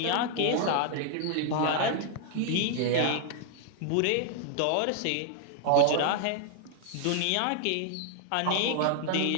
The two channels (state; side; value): different; both; correlation 0.00